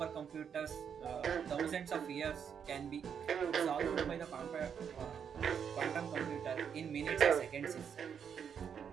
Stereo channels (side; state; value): left; quieter; 7.5 dB